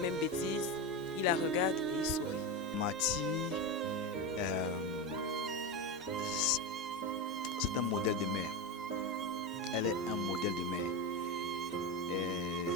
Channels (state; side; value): normal; both; correlation 0.16